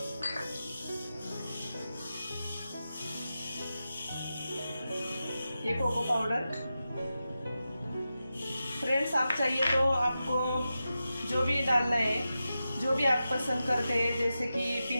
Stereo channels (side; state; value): both; inverted; correlation -0.91